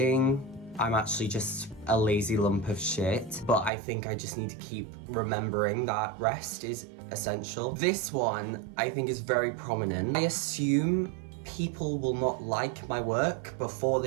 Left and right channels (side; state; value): left; drops out; at 3.7 s